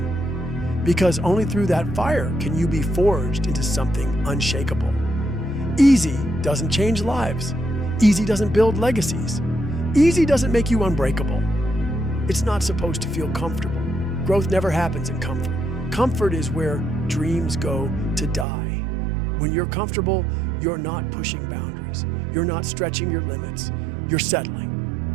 because only through that fire can you be forged into something unshakable. Easy doesn't change lives. Easy doesn't build legacies. Easy doesn't make you unbreakable. It's not supposed to feel comfortable. Growth never happens in comfort. Comfort is where dreams go to die. When you're comfortable, you're not pushing boundaries. You're not stretching your limits. You're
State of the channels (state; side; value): drops out; left; at 18.4 s